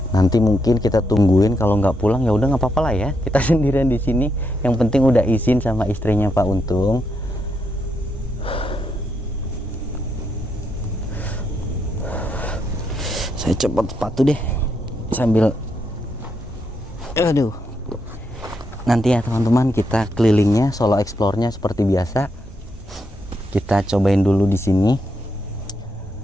nanti mungkin kita tungguin, kalau nggak pulang ya udah nggak apa-apa lah ya, kita sendirian di sini. Yang penting udah izin sama istrinya Pak Untung. Saya cepat sepatu deh sambil, aduh. Nanti ya teman-teman, kita kelilingnya, solo explore-nya seperti biasa. Kita cobain dulu di sini.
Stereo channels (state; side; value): normal; both; correlation 0.80